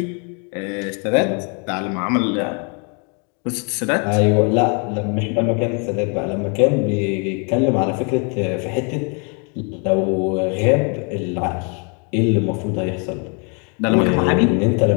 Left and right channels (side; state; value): right; quieter; 36.5 dB